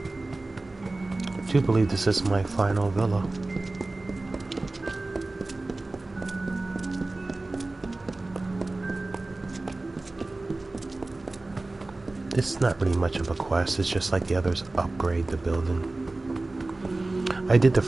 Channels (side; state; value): left; quieter; 3.1 dB